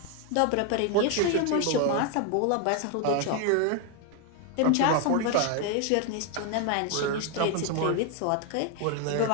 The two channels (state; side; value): different; both; correlation 0.01